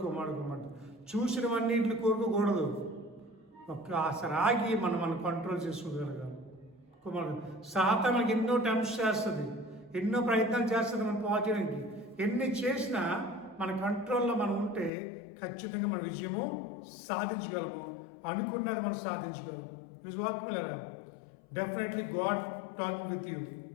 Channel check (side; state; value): right; drops out; at 14.9 s